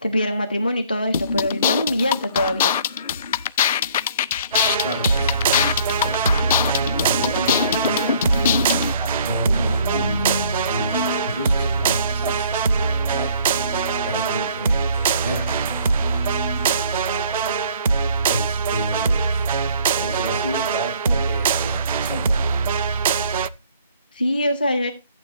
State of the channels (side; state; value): both; inverted; correlation -0.57